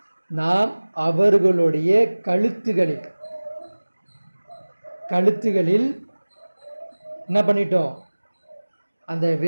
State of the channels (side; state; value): both; inverted; correlation -1.00